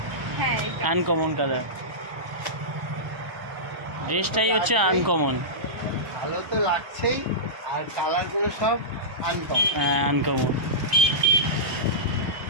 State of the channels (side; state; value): left; late; 1.0 ms